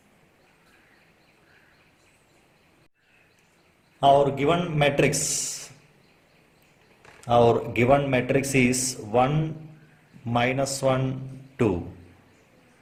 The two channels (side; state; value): both; identical; correlation 1.00